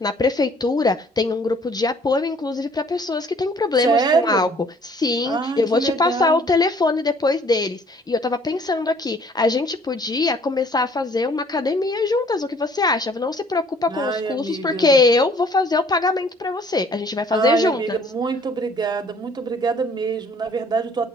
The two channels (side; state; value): both; normal; correlation 0.57